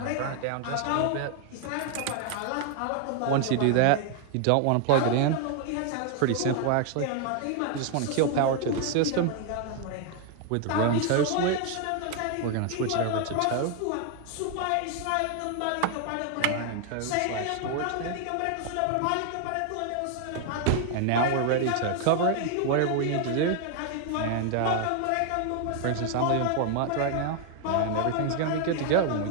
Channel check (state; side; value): different; both; correlation 0.00